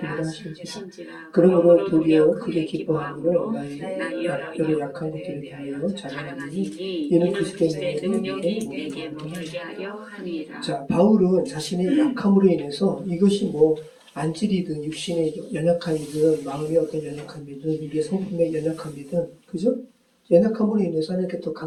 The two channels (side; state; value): both; identical; correlation 1.00